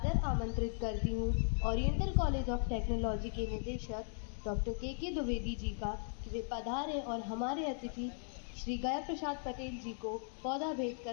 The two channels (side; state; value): right; silent; 53 dB below the other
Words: आमंत्रित करती हूँ ओरिएंटल कॉलेज ऑफ टेक्नोलॉजी के निदेशक डॉक्टर के द्विवेदी जी का कि वे पधारें और हमारे अतिथि श्री गया प्रसाद पटेल जी को पौधा भेंट